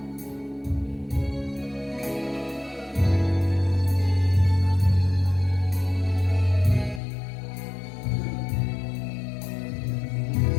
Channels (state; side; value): drops out; right; at 7.0 s